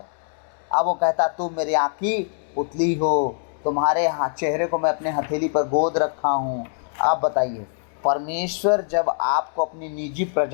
अब वो कहता तुम मेरी आँखी पुतली हो, तुम्हारे चेहरे को मैं अपने हथेली पर गोद रखा हूँ। आप बताइए, परमेश्वर जब आपको अपनी निजी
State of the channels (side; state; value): right; silent; digital silence